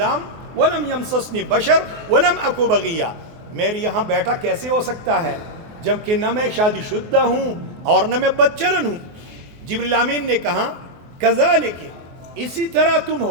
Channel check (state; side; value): late; left; 24 ms